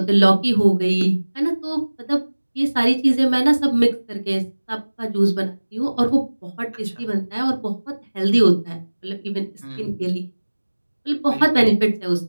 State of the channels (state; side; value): inverted; both; correlation -1.00